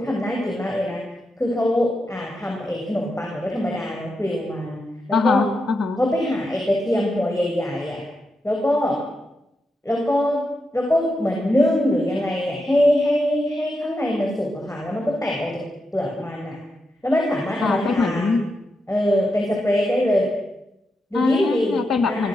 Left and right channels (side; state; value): both; normal; correlation 0.86